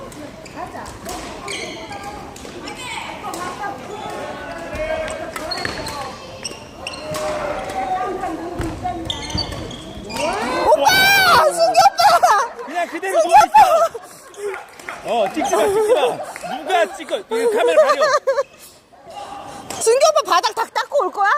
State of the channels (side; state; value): both; identical; correlation 1.00